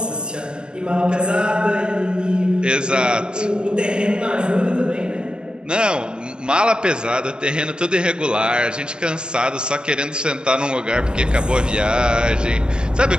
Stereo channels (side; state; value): left; late; 0.049 ms